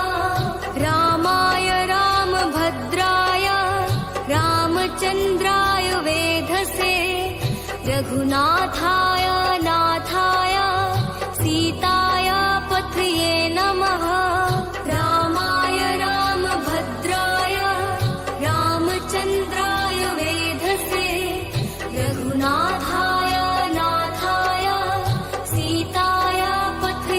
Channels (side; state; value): both; identical; correlation 1.00